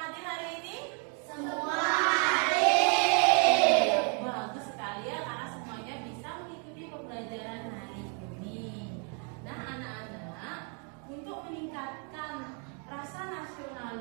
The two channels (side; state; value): left; quieter; 38.8 dB